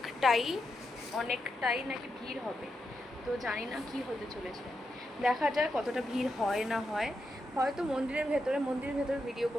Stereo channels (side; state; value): both; normal; correlation 0.85